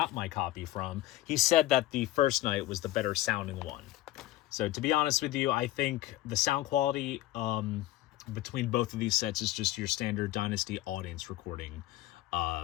my copy from, he said that the first night was the better sounding one. So, to be honest with you, I think the sound quality between both of these sets is just your standard Dynasty audience recording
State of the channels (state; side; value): quieter; right; 15.7 dB